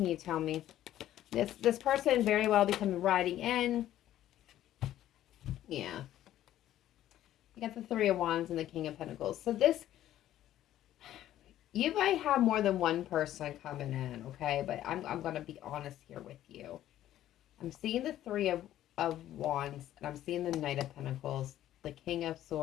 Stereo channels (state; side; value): quieter; right; 12.7 dB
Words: you tell me? This person very well becoming riding in. Yeah. You got the Three of Wands and the King of Pentacles. So this, you might have more than one person coming in, okay? But I'm going to be honest here with you. I'm seeing the Three of Wands, and I'm seeing the Knight of Pentacles, the King of